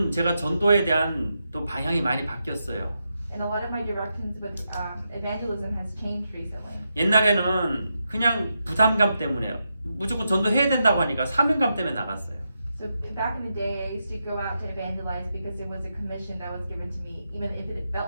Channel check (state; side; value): inverted; both; correlation -0.85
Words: 제가 전도에 대한 또 방향이 많이 바뀌었어요. And a lot of my directions with evangelism has changed recently. 옛날에는 그냥 부담감 때문에 무조건 전도해야 된다고 하니까 사명감 때문에 나갔어요. So back in the day, I used to go out to evangelize because it was a commission that was given to me, even if it